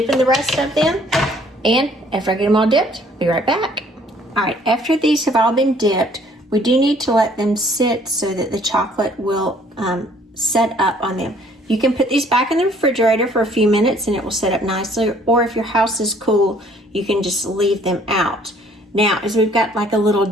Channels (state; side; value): normal; both; correlation 0.59